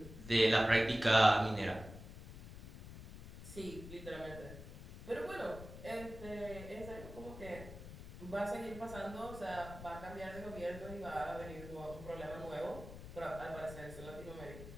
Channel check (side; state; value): left; noise; rumble, 13 dB below the sound